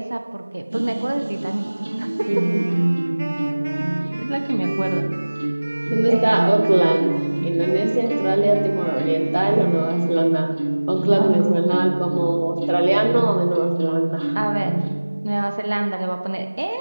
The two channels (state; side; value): inverted; both; correlation -1.00